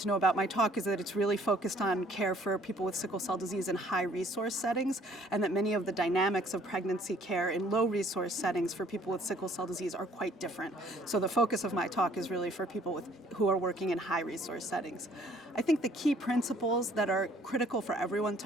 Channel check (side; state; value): both; normal; correlation 0.58